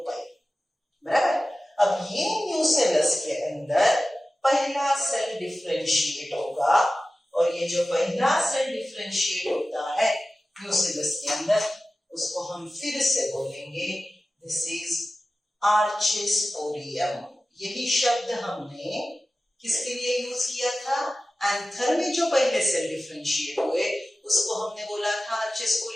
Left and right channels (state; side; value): normal; both; correlation 0.95